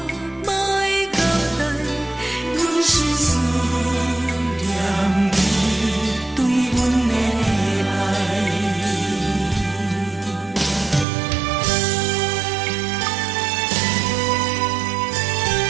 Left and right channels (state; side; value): drops out; left; at 11.1 s